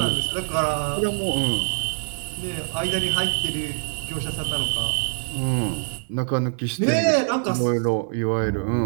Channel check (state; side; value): silent; left; 62 dB below the other